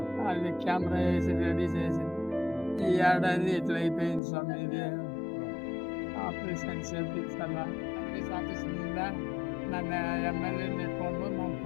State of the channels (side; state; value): right; drops out; at 4.2 s